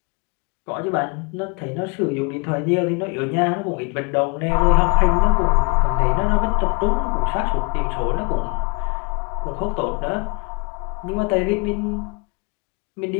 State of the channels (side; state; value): right; quieter; 31.8 dB